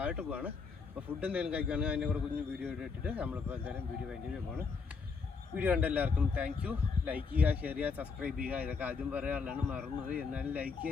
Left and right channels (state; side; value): quieter; right; 5.0 dB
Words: പോവാണ്. അപ്പോൾ ഫുഡ് എന്തെങ്കിലും കഴിക്കുകയാണെങ്കിൽ അതിൻ്റെ കൂടെ കുഞ്ഞ് വീഡിയോ ഇട്ടിട്ട് നമ്മളിപ്പോൾ എന്തായാലും വീഡിയോ വേണ്ടി പോവാണ്. വീഡിയോ കണ്ട എല്ലാവർക്കും താങ്ക് യു. ലൈക്ക് ചെയ്യുക, ഷെയർ ചെയ്യുക, സബ്സ്ക്രൈബ് ചെയ്യുക. ഇതൊക്കെ ആദ്യം പറയാനുള്ളതാണ്, മറന്നുപോയി. എന്നാലും ലൈക്ക്